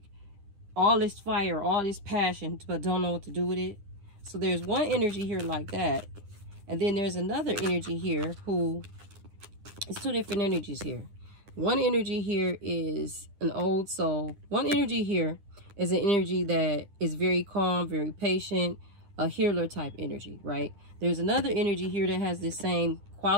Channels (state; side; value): late; left; 9.9 ms